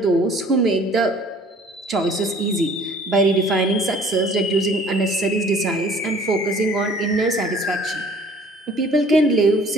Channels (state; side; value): normal; both; correlation 0.53